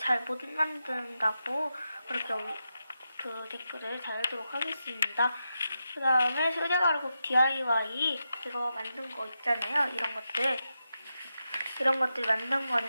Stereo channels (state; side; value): inverted; both; correlation -0.88